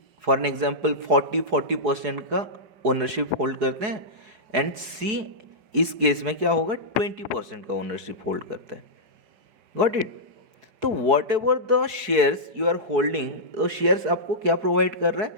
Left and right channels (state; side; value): late; left; 4.7 ms